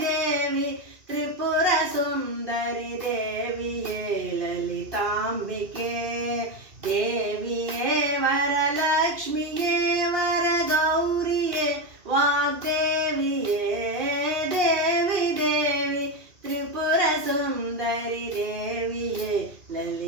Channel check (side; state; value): left; late; 2.7 ms